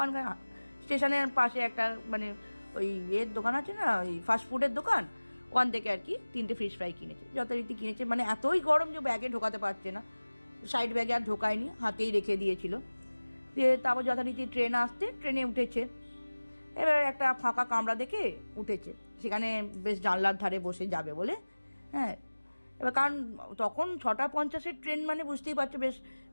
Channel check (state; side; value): inverted; both; correlation -1.00